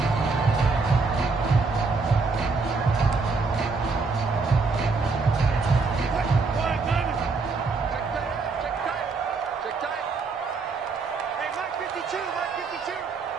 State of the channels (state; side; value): quieter; left; 4.3 dB